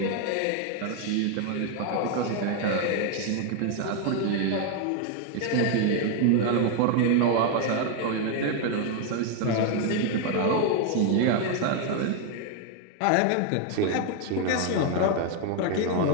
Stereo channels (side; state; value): both; different; correlation 0.01